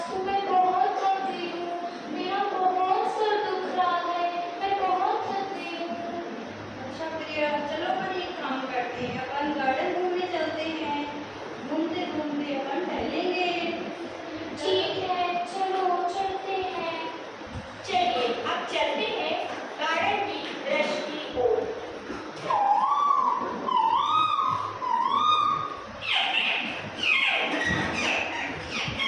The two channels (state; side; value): identical; both; correlation 1.00